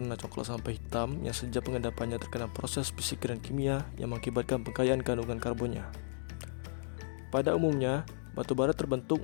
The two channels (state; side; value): silent; right; digital silence